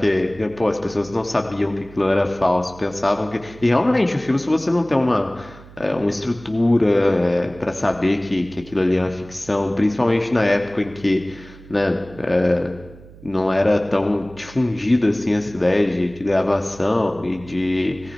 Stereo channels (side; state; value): right; noise; hum, 20 dB below the sound